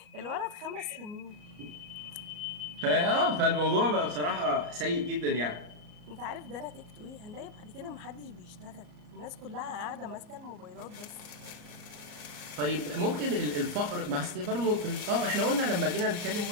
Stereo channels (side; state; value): left; late; 34 ms